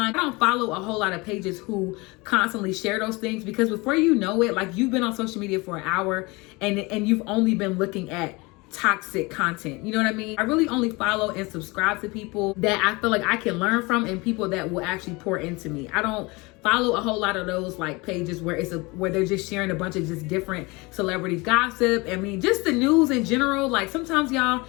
I don't follow a whole lot of pages who constantly share those things because before you know it, like you've been on social media for an hour and you've only been looking at toxic content. You know what I mean? I really only follow and subscribe to people that I feel like I can learn from and people that will actually pour into me. I don't follow a whole lot of those like pages where where they're just sharing a bunch of just different celebrity gossip. I mean, just the news in general. Like sometimes, y'all,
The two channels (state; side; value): quieter; right; 25.1 dB